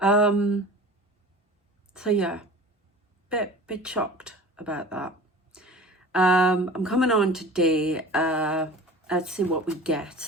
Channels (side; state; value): both; normal; correlation 0.40